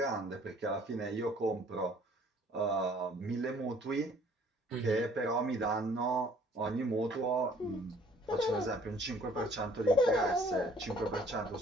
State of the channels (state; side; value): normal; both; correlation 0.57